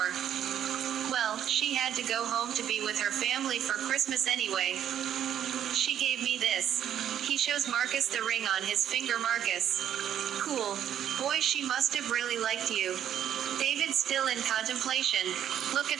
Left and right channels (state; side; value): quieter; left; 10.1 dB